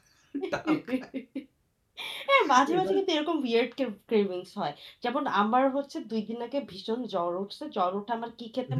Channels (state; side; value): identical; both; correlation 1.00